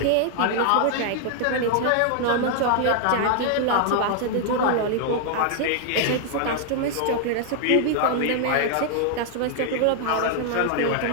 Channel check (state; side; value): different; both; correlation 0.00